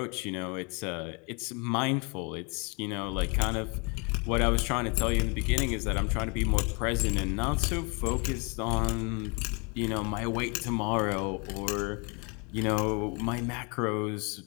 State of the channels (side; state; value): right; quieter; 32.5 dB